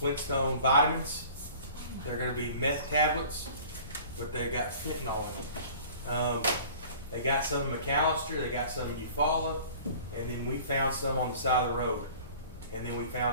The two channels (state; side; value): inverted; both; correlation -0.45